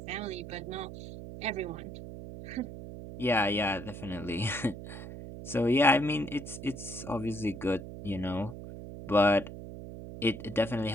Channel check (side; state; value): right; noise; hum, 11 dB below the sound